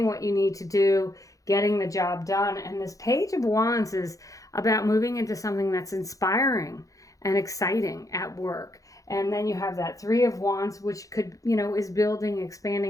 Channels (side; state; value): right; late; 0.16 ms